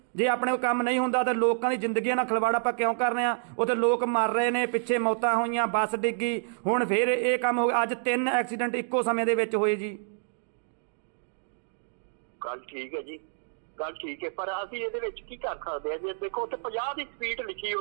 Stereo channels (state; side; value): silent; left; digital silence